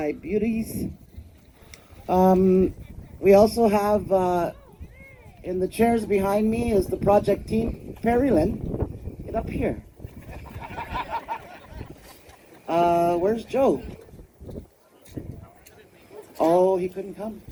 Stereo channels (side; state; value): both; identical; correlation 1.00